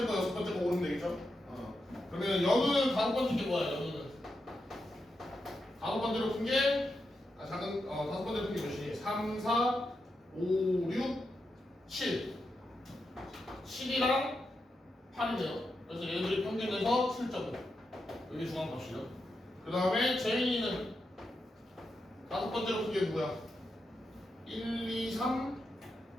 거, 6번째 거 고르면 되겠죠? 그러면 연우는 5번째 게 뭐야? 연우는 5번째로 푼 게 작은 5번째로 푼 게 몇이니? 3, 4, 5, 6, 7 7이랑 8이네요. 그래서 얘들이 평균에서 7.5 여기 중앙값이죠. 그 다음에 재민이는 5번째로 푼 게 누구야? 1, 2, 3,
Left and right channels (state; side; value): normal; both; correlation 0.86